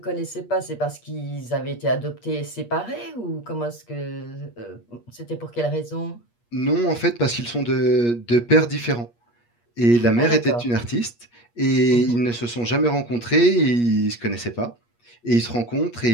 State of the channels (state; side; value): late; right; 8.4 ms